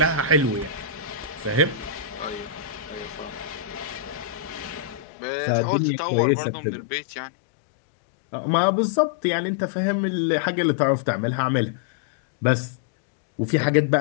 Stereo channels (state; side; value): drops out; right; at 5.1 s